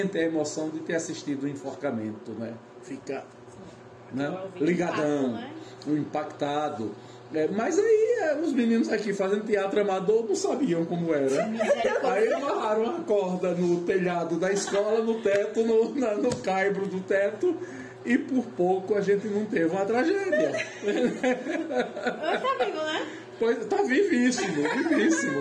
a emoção de ter assistido o enforcamento, né? Fica, né? Ligadão, impactado. Mas aí os meninos aqui fazendo teatro amador não sabiam como era. Aí amarraram a corda no telhado da escola, no teto, no caibro do teto, e por pouco a gente não teve uma tragédia. Tá vivo, né? Pois, tá vivíssimo,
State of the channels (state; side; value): identical; both; correlation 1.00